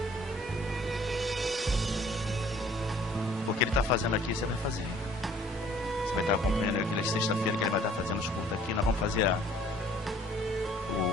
O que ele está fazendo aqui, você vai fazer. Você vai estar acompanhando aquela sexta-feira que ele vai estar fazendo os cultos aqui. Nós vamos fazer a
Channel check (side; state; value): both; normal; correlation 0.56